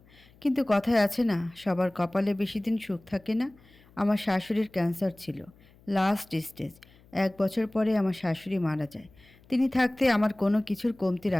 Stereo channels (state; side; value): noise; left; hum, 28 dB below the sound